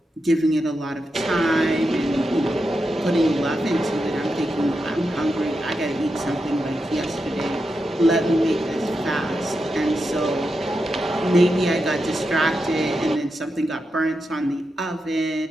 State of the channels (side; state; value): both; normal; correlation 0.87